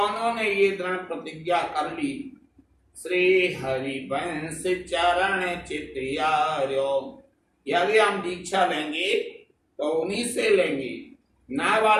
ने ये दृढ़ प्रतिज्ञा कर ली, श्री हरिवंश चरण चित्यार्यो। यदि हम दीक्षा लेंगे तो उन्हीं से लेंगे।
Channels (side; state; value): both; identical; correlation 1.00